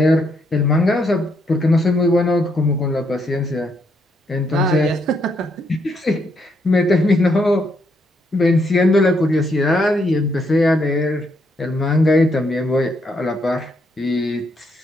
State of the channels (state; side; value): normal; both; correlation 0.76